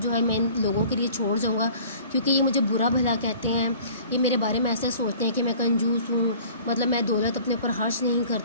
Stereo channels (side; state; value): both; inverted; correlation -0.48